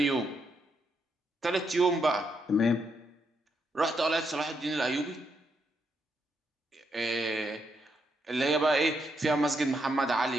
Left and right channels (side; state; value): both; normal; correlation 0.79